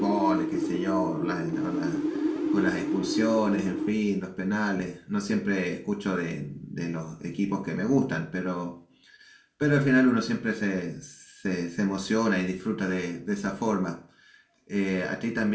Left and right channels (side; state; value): both; identical; correlation 1.00